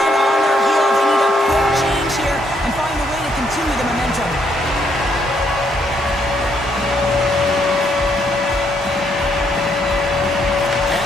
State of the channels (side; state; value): both; normal; correlation 0.73